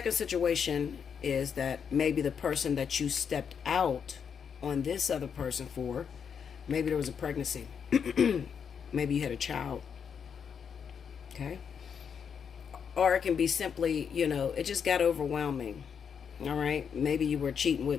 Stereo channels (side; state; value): right; quieter; 7.1 dB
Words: situation is that maybe the person that you stepped out on this other person for, maybe there was a pregnancy. Maybe you had a child. Okay? Or it can be simply, it just got overwhelming. All right? Maybe you were cheating